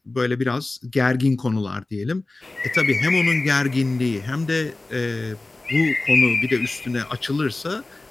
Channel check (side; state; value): right; quieter; 3.1 dB